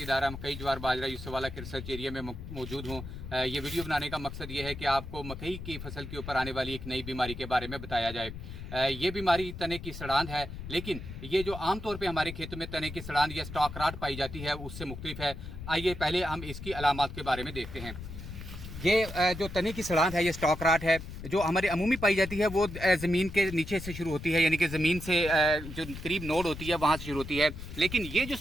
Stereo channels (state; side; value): noise; left; rumble, 10 dB below the sound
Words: दायरा मकई ज्वार बाजरा यूसुफवाला के रिसर्च एरिया में मौजूद हूँ। ये वीडियो बनाने का मकसद ये है कि आपको मकई की फसल के ऊपर आने वाली एक नई बीमारी के बारे में बताया जाए। ये बीमारी तने की सड़ांध है, लेकिन ये जो आमतौर पे हमारे खेतों में तने की सड़ांध या स्टॉक राट पाई जाती है उससे मुख्तलिफ है। आइए पहले हम इसकी अलामात के बारे में देखते हैं। ये जो तने की सड़ांध है, ये स्टॉक राट है जो हमारे अमूमी पाई जाती है। वो ज़मीन के नीचे से शुरू होती है, यानी कि ज़मीन से जो करीब नोड होती है वहाँ से शुरू होती है। लेकिन ये जो